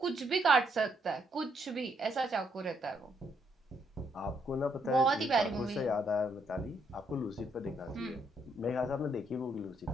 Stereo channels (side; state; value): both; normal; correlation 0.74